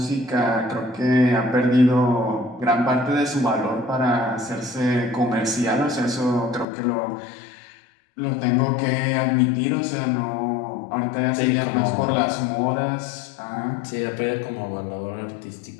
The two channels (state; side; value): drops out; right; at 6.7 s